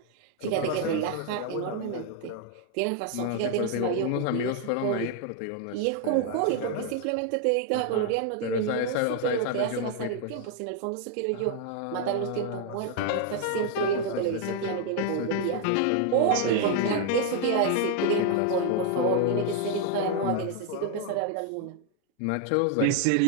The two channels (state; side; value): different; both; correlation 0.00